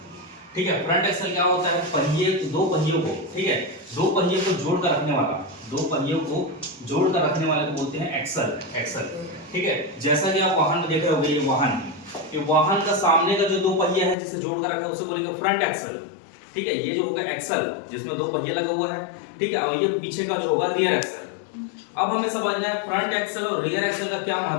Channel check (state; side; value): drops out; right; at 14.2 s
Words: ठीक है। फ्रंट एक्सल क्या होता है? पहिए, दो पहियों को, ठीक है, दो पहियों को जोड़ कर रखने वाला, दो पहियों को जोड़ कर रखने वाले को बोलते हैं एक्सल, एक्सल, ठीक है। जैसा कि आप वाहन में देख रहे होंगे, ये वाहन, ये वाहन का सामने का जो दो पहिया है जिसे जोड़ कर रखा है उसे बोलेंगे फ्रंट एक्सल, ठीक है। ये जो होगा एक्सल जिसमें दो पहिया लगा हुआ है, ठीक है, और ये पीछे का जो होगा रियर एक्सल। अब हमें समझना है फ्रंट एक्सल और रियर एक्सल का क्या